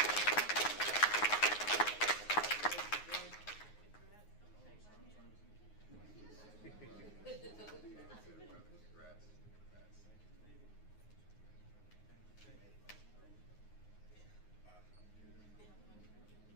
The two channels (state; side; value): late; right; 9.5 ms